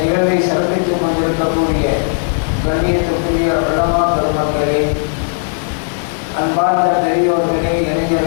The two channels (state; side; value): silent; right; 65 dB below the other